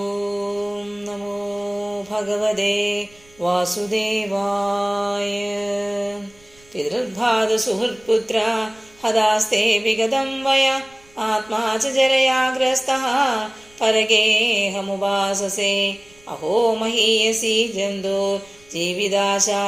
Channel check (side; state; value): right; noise; rumble, 29 dB below the sound